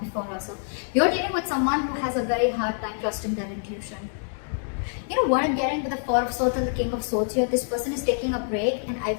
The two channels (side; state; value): right; silent; digital silence